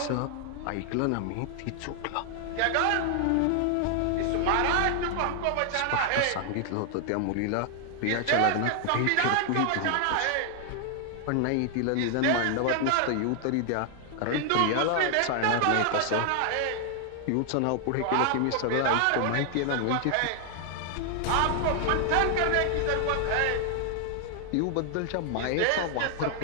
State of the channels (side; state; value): both; different; correlation 0.00